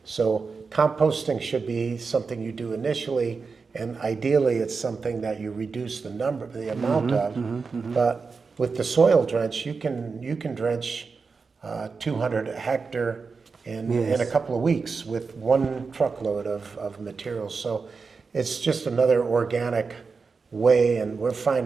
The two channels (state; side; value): quieter; left; 4.8 dB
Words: So composting should be something you do initially, and ideally it's something that you reduce the amount of. But with the soil drench, you can drench 200 hectare in a couple of weeks with one truckload of materials. So it's just another organic way, and we're